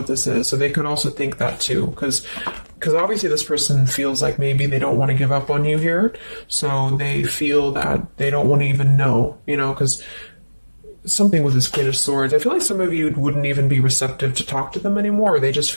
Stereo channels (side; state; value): both; inverted; correlation -1.00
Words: this is. So they could also think that too, because obviously this person feels like maybe they don't want to give up on you here. So they feel that they don't want to even know, because something with this Queen of Swords, I feel like some of you wouldn't even be receptive to talk to them anymore. They just